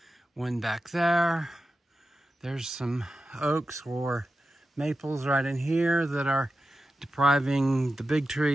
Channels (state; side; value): normal; both; correlation 0.91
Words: one back there. There's some oaks or maples right in here that are depriving the big